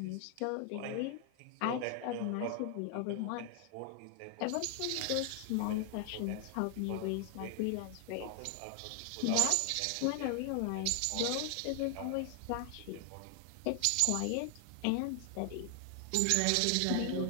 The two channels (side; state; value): both; different; correlation 0.00